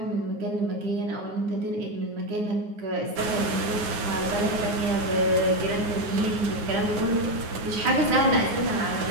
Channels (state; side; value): late; left; 9.5 ms